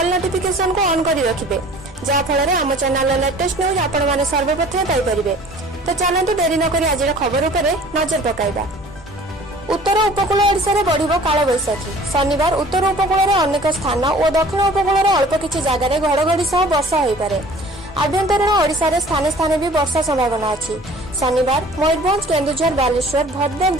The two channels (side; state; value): both; normal; correlation 0.49